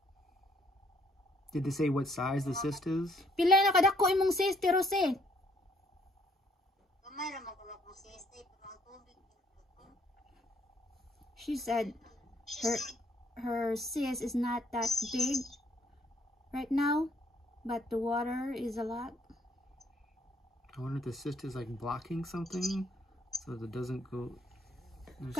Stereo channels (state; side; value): normal; both; correlation 0.66